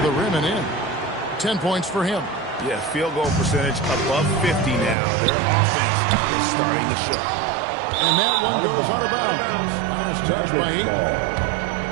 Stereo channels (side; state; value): left; drops out; at 5.0 s